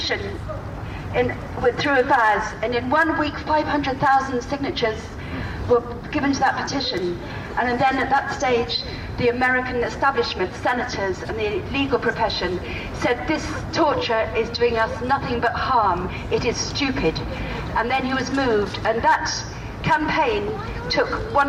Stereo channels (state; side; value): identical; both; correlation 1.00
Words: through a Vaz, and in 1 week 500,000 signatures were given to that petition. And then at that stage, the American establishment, senators and the legal profession said this torture is doing us nothing but harm, it is stupid. And then he was moved, and that campaign took